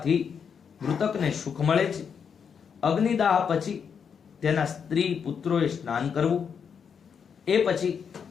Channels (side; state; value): right; quieter; 6.9 dB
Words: મૃતકને સુખ મળે છે. અગ્નિદાહ પછી તેના સ્ત્રી પુત્રોએ સ્નાન કરવું. એ પછી